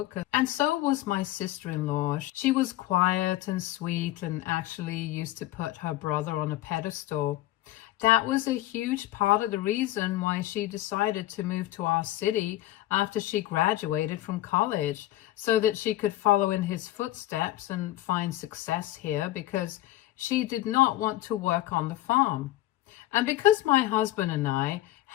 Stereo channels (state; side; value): quieter; right; 15.6 dB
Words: and so was my sister-in-law. She was quiet and sweet and actually used to put her brother on a pedestal. That was a huge part of the reason why she decided to move to our city after she graduated from college, so that she could follow in his footsteps and find success here, because she did not want to work on the farm. And because my husband and I